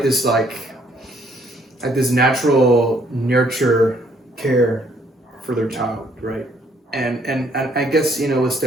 this like this natural nurture care for their child, right? And I guess with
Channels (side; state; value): both; normal; correlation 0.66